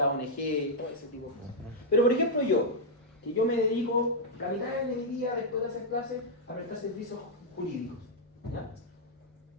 ONG, todo ese tipo de cosas. Pero por ejemplo yo me dedico la mitad de mi día después de hacer clases a prestar servicios jurídicos. ¿Ya?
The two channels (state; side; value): normal; both; correlation -0.04